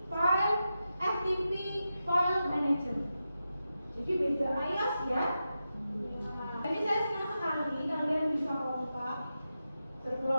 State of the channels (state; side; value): inverted; both; correlation -0.90